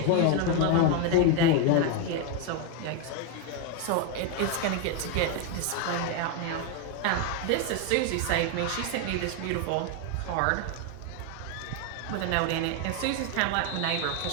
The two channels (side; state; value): both; different; correlation 0.01